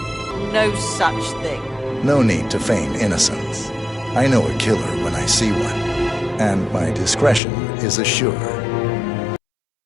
No such thing. No need to feign innocence. I know a killer when I see one, and my discretion is assured.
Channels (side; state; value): right; drops out; at 7.4 s